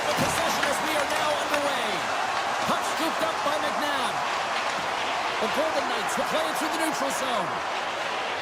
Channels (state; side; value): identical; both; correlation 1.00